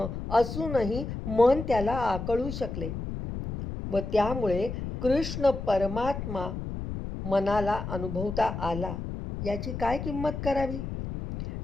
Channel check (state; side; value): noise; left; rumble, 6 dB below the sound